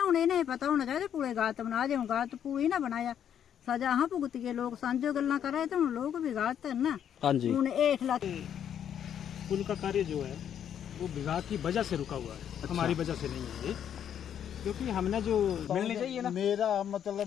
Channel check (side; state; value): right; quieter; 9.3 dB